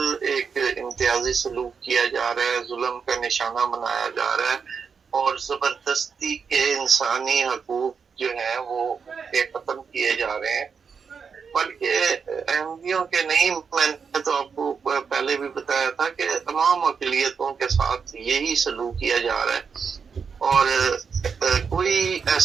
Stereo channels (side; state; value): left; quieter; 6.0 dB